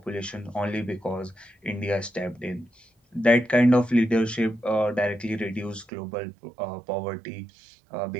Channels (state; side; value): drops out; left; at 5.9 s